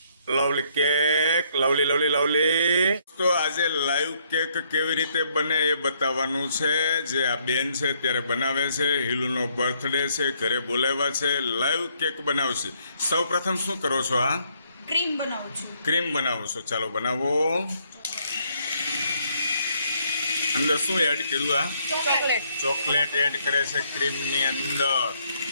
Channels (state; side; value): inverted; both; correlation -0.70